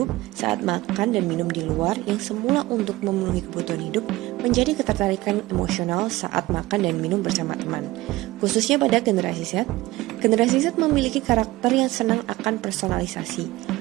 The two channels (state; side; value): quieter; left; 18.5 dB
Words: saat makan dan minum di luar yang semula untuk memenuhi kebutuhan hidup menjadi ketertarikan emosional saat makan dan minum bersama teman. Khususnya pada generasi Z, generasi Z memiliki karakter yang senang akan personalisasi.